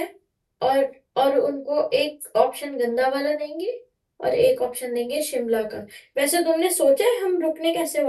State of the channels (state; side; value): identical; both; correlation 1.00